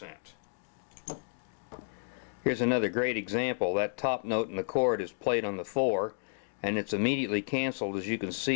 Here's another great example. That top note in the chord is played on the 4, and it's immediately canceled, as you can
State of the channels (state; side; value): silent; right; digital silence